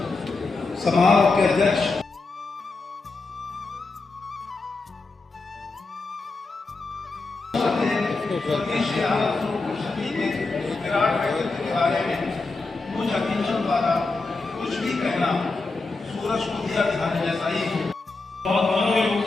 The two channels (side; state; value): right; quieter; 3.7 dB